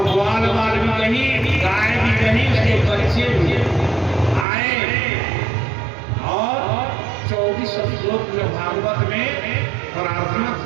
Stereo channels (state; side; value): drops out; left; at 4.5 s